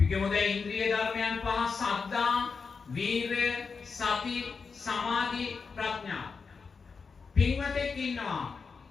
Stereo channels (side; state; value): right; quieter; 5.1 dB